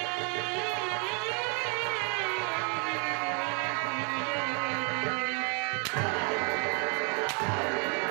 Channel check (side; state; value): left; quieter; 37.3 dB